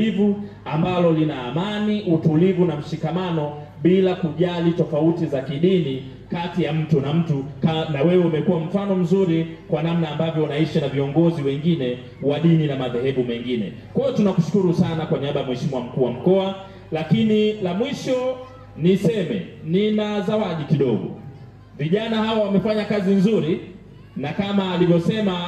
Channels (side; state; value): both; identical; correlation 1.00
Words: ambalo lina amani, utulivu na mshikamano bila kujali tofauti za kidini kati ya mtu na mtu. Na wewe umekuwa mfano mzuri kwa namna ambavyo unaishi na viongozi wengine wa dini na madhehebu mengine. Kwa hiyo tunakushukuru sana kwa niaba ya Mheshimiwa mkuu wa mkoa. Lakini la mwisho niseme, nina zawadi kidogo. Vijana hawa wamefanya kazi nzuri, na kama